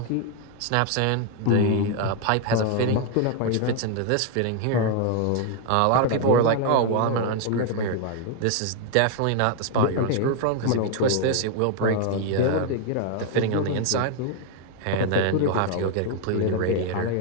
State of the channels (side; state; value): both; different; correlation 0.00